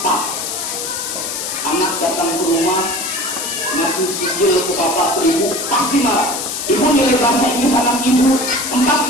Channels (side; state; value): left; noise; hiss, 4 dB below the sound